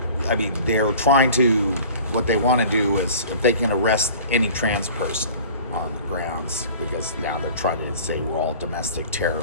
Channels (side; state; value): both; inverted; correlation -0.44